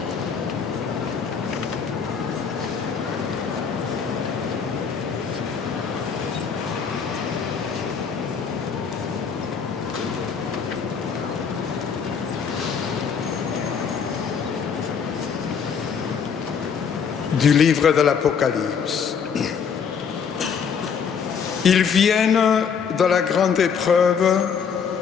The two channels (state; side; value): quieter; right; 6.6 dB